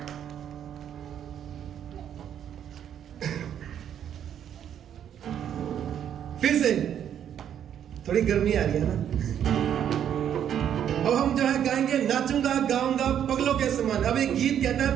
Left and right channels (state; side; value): quieter; left; 9.5 dB